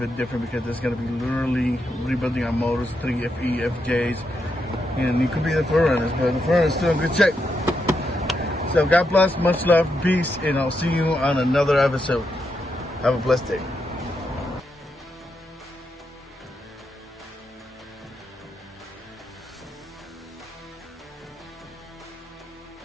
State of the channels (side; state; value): both; normal; correlation 0.83